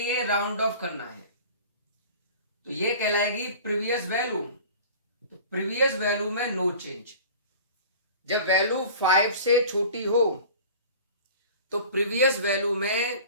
राउंड ऑफ करना है, तो ये कहलाएगी प्रीवियस वैल्यू। तो प्रीवियस वैल्यू में नो चेंज। जब वैल्यू 5 से छोटी हो तो प्रीवियस वैल्यू में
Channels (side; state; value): both; inverted; correlation -0.41